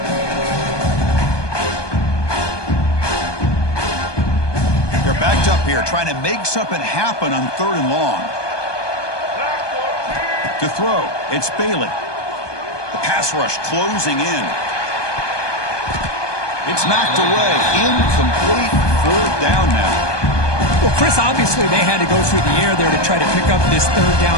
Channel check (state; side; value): late; right; 1.2 ms